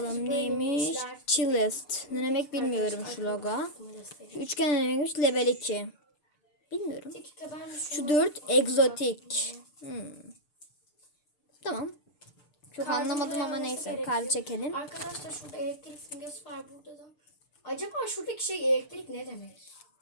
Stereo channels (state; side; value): late; right; 6.7 ms